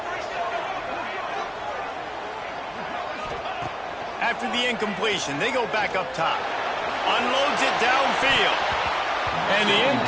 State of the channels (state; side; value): identical; both; correlation 1.00